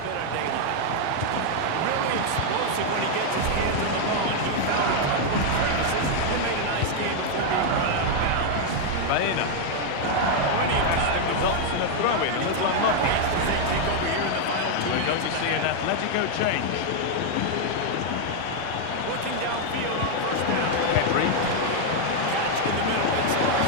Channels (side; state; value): both; different; correlation 0.00